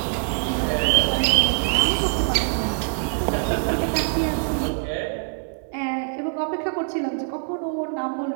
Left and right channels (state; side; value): silent; left; digital silence